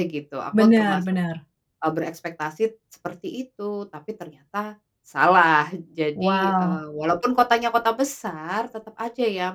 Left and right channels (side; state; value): both; identical; correlation 1.00